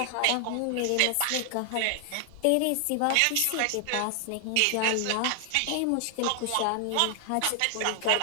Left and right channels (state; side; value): different; both; correlation 0.00